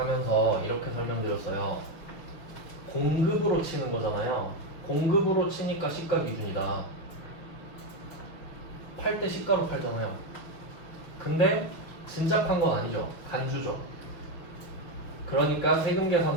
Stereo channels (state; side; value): late; right; 6.2 ms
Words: 이렇게 설명드렸어요. 공급으로 치는 거잖아요. 공급으로 치니까 시가 기준이다. 팔 때 시가로 팔잖아요. 근데 진짜 판 건 아니죠. 간주죠. 그러니까